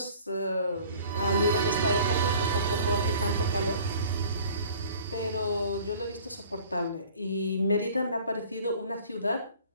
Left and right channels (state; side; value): inverted; both; correlation -0.49